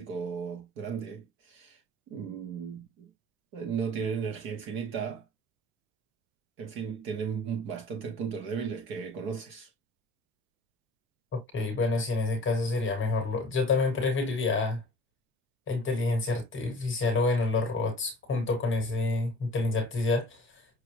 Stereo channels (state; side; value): normal; both; correlation 0.47